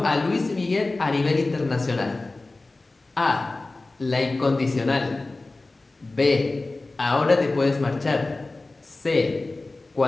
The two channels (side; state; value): right; quieter; 3.2 dB